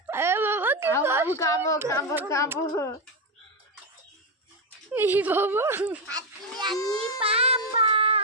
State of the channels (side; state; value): both; normal; correlation 0.07